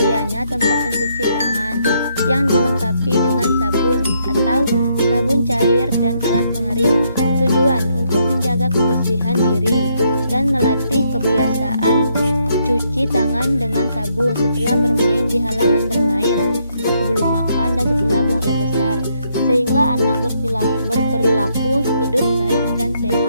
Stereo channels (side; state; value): both; inverted; correlation -0.74